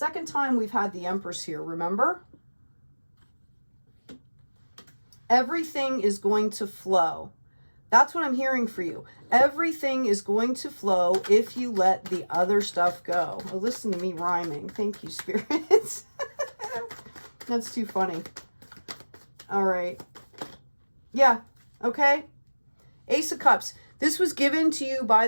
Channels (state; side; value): inverted; both; correlation -1.00